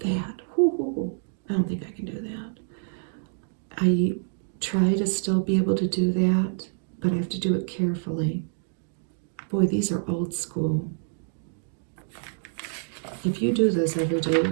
I don't think I can do that. I try to still be able to do that, but I have to do it carefully. Boy, these are old school. If you do this every day, you're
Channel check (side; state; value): left; silent; digital silence